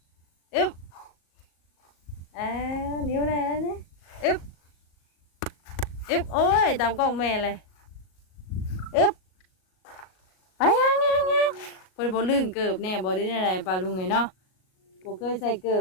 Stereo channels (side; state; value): right; late; 38 ms